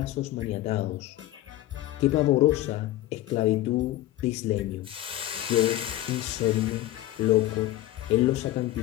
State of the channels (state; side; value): quieter; right; 15.0 dB